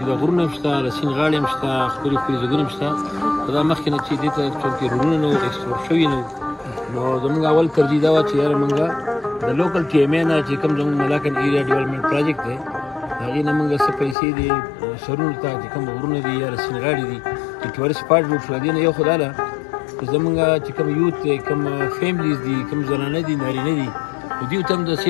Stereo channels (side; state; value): right; drops out; at 14.2 s